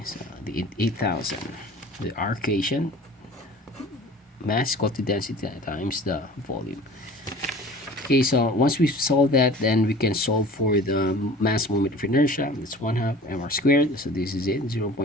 So the 8,000, the R equation, mass equal to density times the volume. Okay, so once we solve that, then we can solve for the mass moment of inertia. It's 1/2 mr squared, so this is it,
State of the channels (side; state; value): both; normal; correlation 0.43